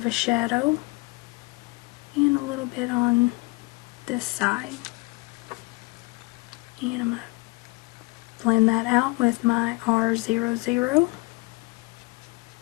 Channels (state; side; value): quieter; right; 25.6 dB